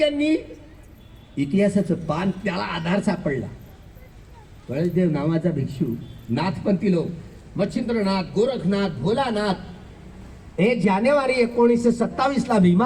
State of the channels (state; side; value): identical; both; correlation 1.00